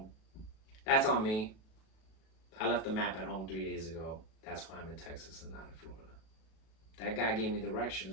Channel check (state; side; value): late; right; 37 ms